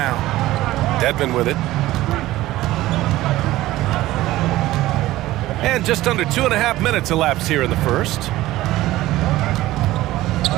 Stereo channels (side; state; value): left; quieter; 16.4 dB